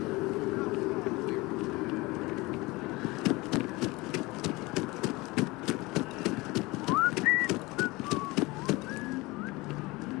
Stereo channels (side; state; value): right; quieter; 22.4 dB